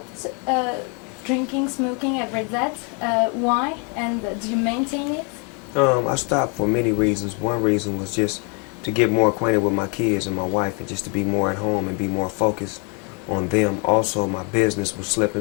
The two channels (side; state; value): right; quieter; 36.0 dB